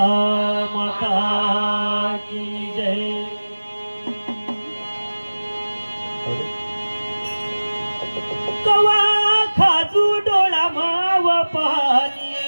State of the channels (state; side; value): inverted; both; correlation -1.00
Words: माता की जय। कवा खाजू डोळा माव पाणी